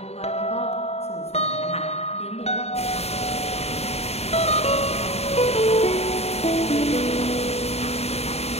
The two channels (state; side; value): late; right; 0.30 ms